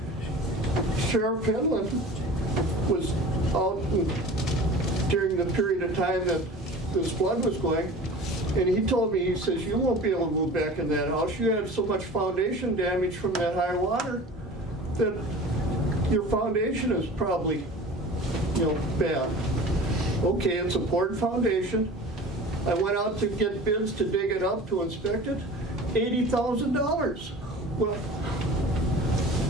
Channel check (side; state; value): both; normal; correlation 0.39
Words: Sheriff Penland was out during the period of time that this flood was going, and he told me, he says, you won't be able to move back in that house. You had so much foundation damage from that high water that your foundation is probably, bad. Okay, it's a poured foundation. I went out to get bids to dig it up, to inspect it, $80,000. Well,